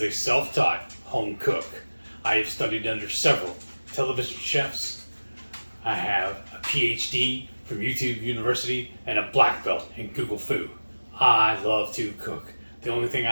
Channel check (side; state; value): both; inverted; correlation -1.00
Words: a self-taught home cook. I have studied under several television chefs. I have a PhD from YouTube University and a black belt in Google Food. I love to cook. The only thing